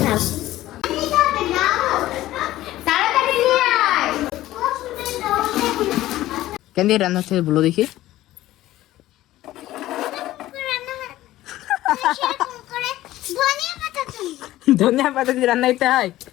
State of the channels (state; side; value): quieter; right; 15.3 dB